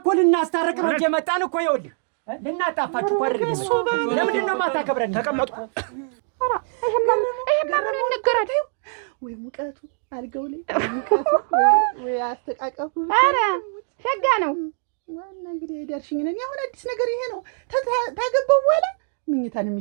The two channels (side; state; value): left; silent; 60 dB below the other